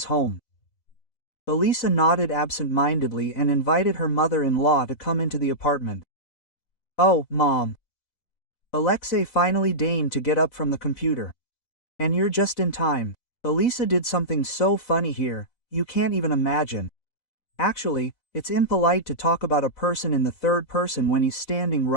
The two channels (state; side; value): late; right; 4.0 ms